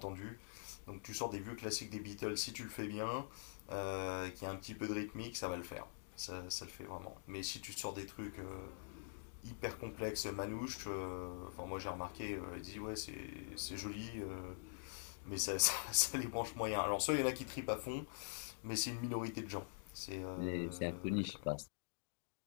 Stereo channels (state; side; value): silent; right; digital silence